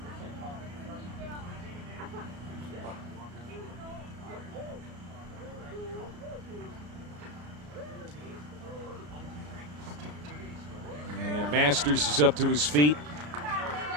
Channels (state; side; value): late; left; 34 ms